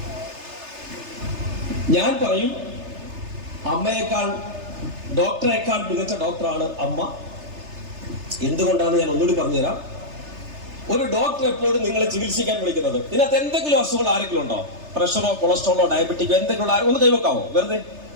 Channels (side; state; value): left; late; 3.3 ms